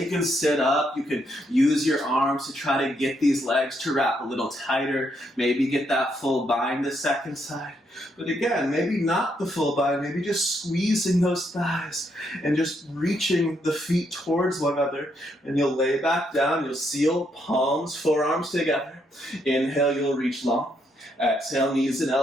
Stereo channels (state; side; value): normal; both; correlation 0.76